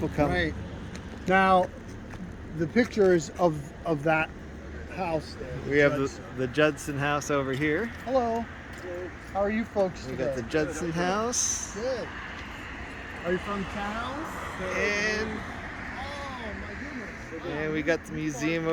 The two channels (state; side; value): identical; both; correlation 1.00